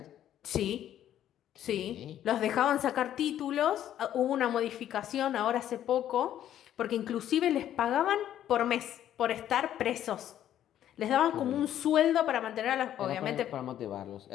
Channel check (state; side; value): quieter; right; 11.3 dB